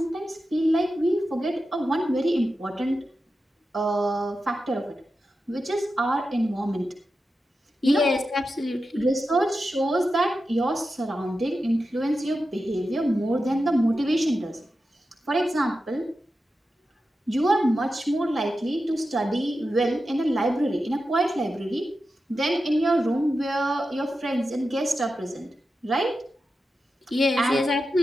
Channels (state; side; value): normal; both; correlation 0.91